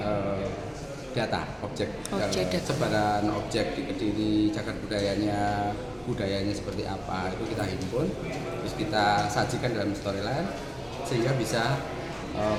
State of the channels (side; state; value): both; identical; correlation 1.00